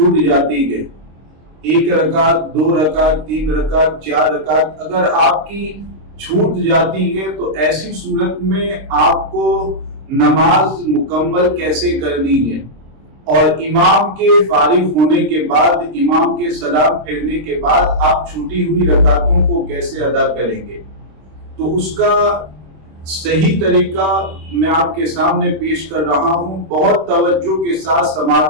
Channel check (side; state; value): left; late; 26 ms